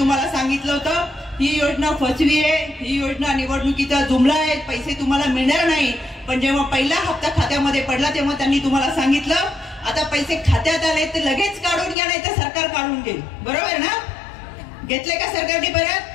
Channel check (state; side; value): drops out; right; at 12.0 s